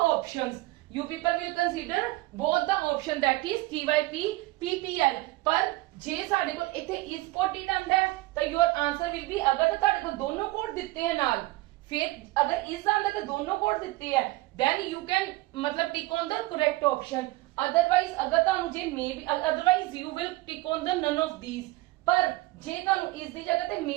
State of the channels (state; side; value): quieter; left; 19.7 dB